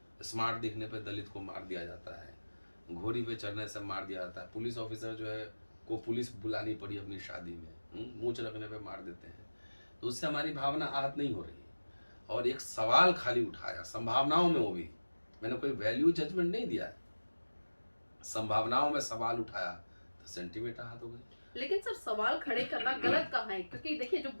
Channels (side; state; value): both; inverted; correlation -1.00